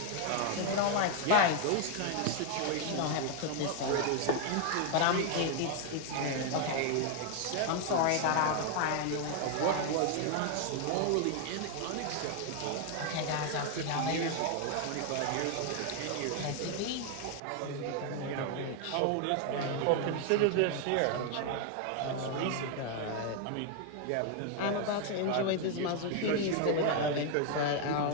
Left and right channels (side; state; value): both; different; correlation 0.01